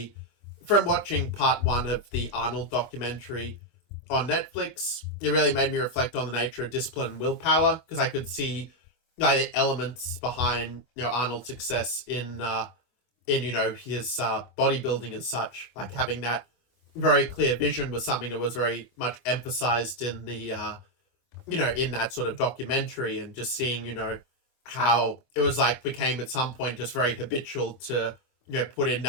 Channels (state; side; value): late; right; 24 ms